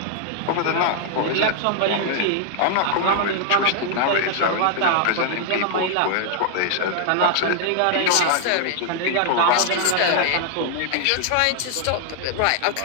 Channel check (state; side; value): different; both; correlation 0.00